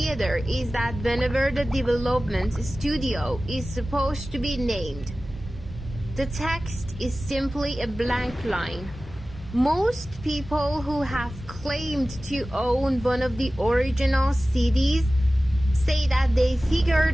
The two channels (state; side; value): normal; both; correlation 0.96